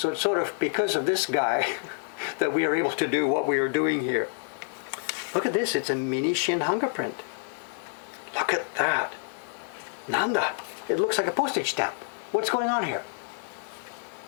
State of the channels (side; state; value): right; silent; 59 dB below the other